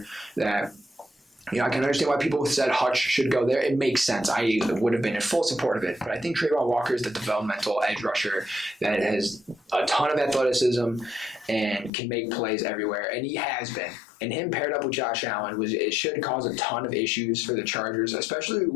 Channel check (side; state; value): right; drops out; at 11.9 s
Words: that. I can understand why people said Hutch should go there. It makes sense. I would have been in full support of it. But I think Trayvon Walker is the developmental edge rusher that has a ton of athleticism and can make plays everywhere. And he has been. And him paired up with Josh Allen it should cause a ton of issues for the Chargers, especially